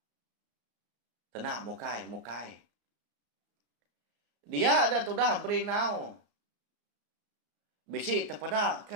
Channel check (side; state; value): left; late; 34 ms